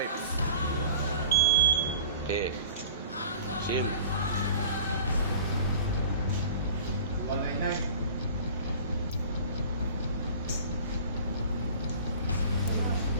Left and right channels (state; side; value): inverted; both; correlation -0.42